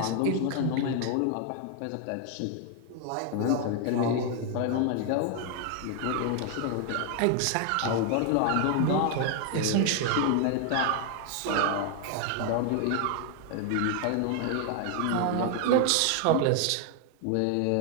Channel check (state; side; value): different; both; correlation 0.00